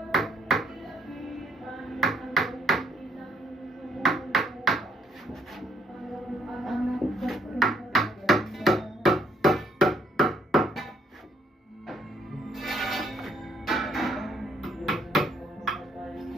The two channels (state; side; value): normal; both; correlation 0.68